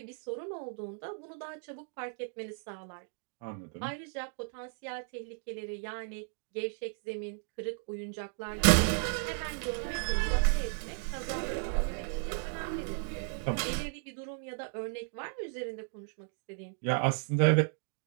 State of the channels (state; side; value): silent; left; 55 dB below the other